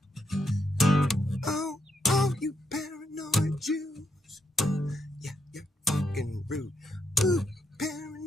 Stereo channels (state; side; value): normal; both; correlation 0.80